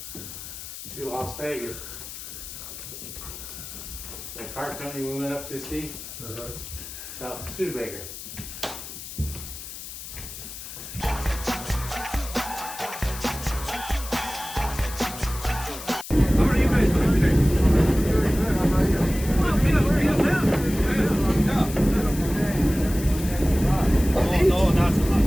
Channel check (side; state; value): left; noise; hiss, 11 dB below the sound